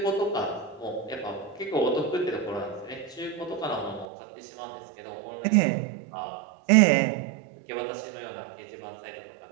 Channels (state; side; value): drops out; left; at 4.0 s